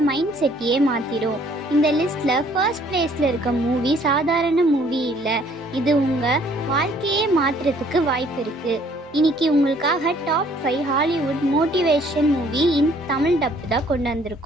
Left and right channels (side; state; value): both; normal; correlation 0.60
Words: மைண்ட் செட்டையே மாற்றிடும். இந்த லிஸ்ட்டில் ஃபர்ஸ்ட் பிளேஸில் இருக்க மூவி சாதாரண மூவி இல்லை, இது உங்கள் வாழ்க்கையே மாற்றுறதுக்கு வாய்ப்பு இருக்குது. இன்னைக்கு உங்களுக்காக top 5 Hollywood motivation movie in Tamil டப்பு தான் கொண்டு